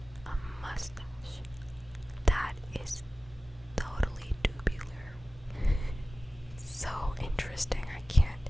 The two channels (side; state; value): both; normal; correlation 0.96